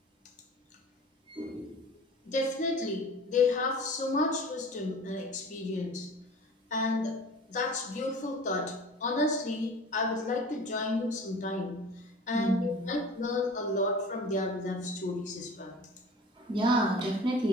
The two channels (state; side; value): normal; both; correlation 0.41